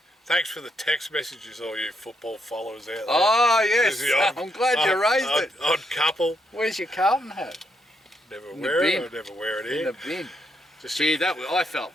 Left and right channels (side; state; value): both; normal; correlation 0.78